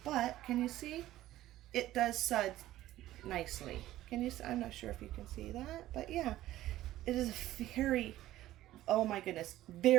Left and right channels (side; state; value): left; quieter; 14.7 dB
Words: but can you see? It does suds nicely. Can you? I'm not sure if you can see that, but yeah, it is a very, oh my goodness,